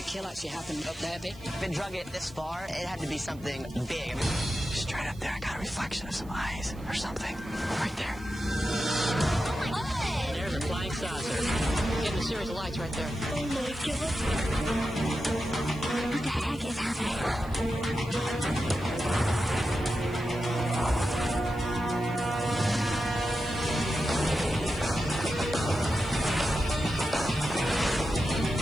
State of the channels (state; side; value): noise; right; hiss, 25 dB below the sound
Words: kill actually happened up there, big? If it drug it this far, it had to be something big. Straight up there, I got a reflection of some eyes or something. Right there. Oh my God. There's a flying saucer. Getting a series of lights right there. Oh my God. What the heck is happening?